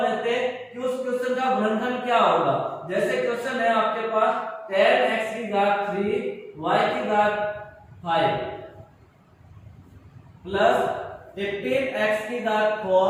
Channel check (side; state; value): both; identical; correlation 1.00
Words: लेते हैं कि उस क्वेश्चन का गुणनखंड क्या होगा। जैसे क्वेश्चन है आपके पास 10x की घात 3 y की घात 5 प्लस 15x की घात